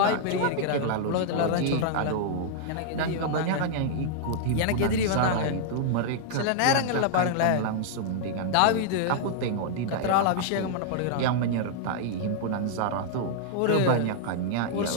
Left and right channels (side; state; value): both; different; correlation -0.01